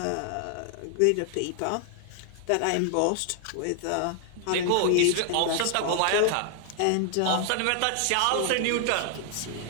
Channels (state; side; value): different; both; correlation 0.00